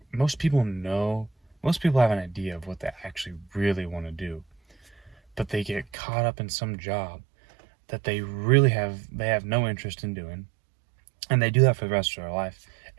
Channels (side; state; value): left; drops out; at 5.9 s